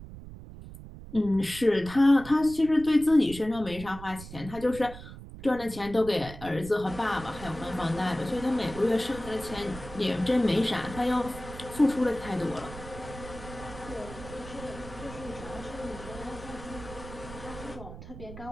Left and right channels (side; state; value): right; noise; rumble, 14 dB below the sound